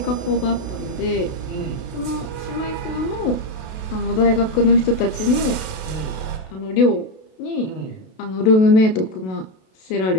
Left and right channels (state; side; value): late; right; 32 ms